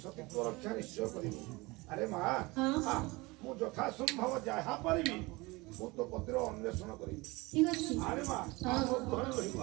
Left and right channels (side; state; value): left; quieter; 23.5 dB